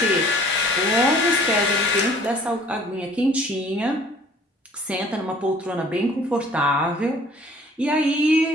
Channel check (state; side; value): normal; both; correlation 0.53